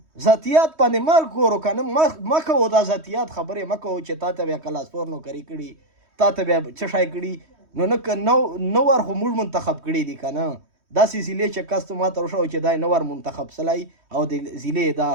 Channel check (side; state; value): left; late; 3.1 ms